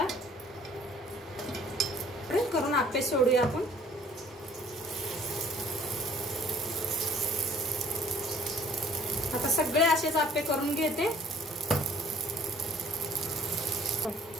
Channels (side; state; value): both; normal; correlation 0.56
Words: करून आप्पे सोडूया आपण। आता सगळे असेच आप्पे करून घेते।